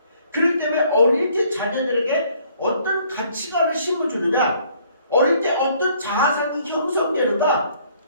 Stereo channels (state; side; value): inverted; both; correlation -0.62